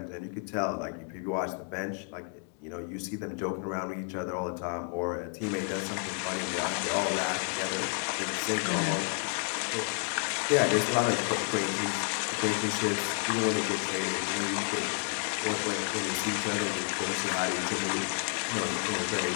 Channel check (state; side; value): quieter; right; 39.2 dB